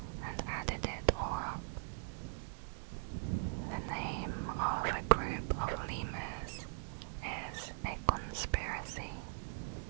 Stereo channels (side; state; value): left; silent; digital silence